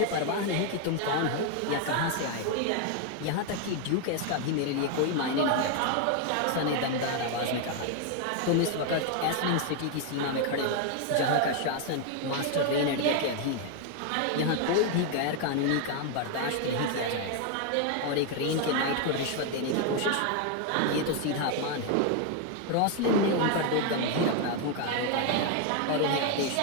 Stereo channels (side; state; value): both; different; correlation 0.01